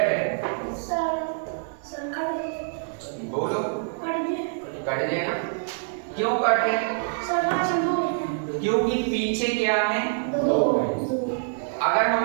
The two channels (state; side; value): silent; left; 61 dB below the other